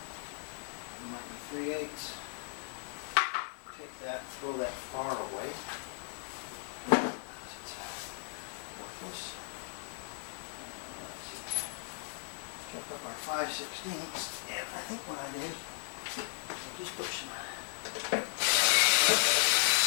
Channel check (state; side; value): silent; right; digital silence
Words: It might be 3/8. Take that and throw that far away. It's worthless. Let's see. Chuck up our 5/16, and I think what I did, I just put some